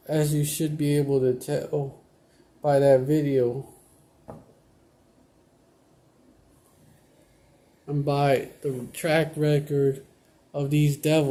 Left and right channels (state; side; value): identical; both; correlation 1.00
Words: you should be able to tell by that video and by the track record of these